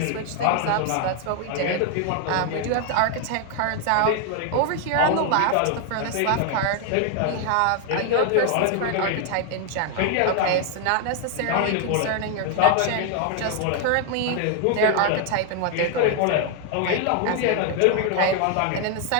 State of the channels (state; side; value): different; both; correlation 0.00